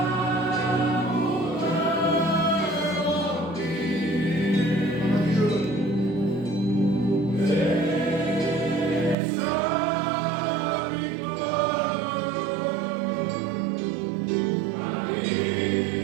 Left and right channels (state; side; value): drops out; left; at 9.2 s